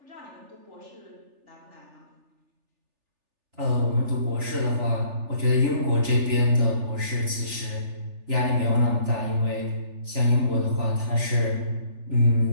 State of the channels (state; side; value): late; left; 3.4 ms